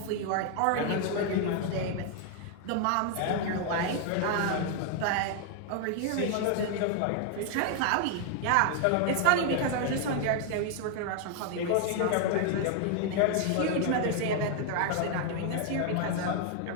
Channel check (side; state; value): both; different; correlation 0.00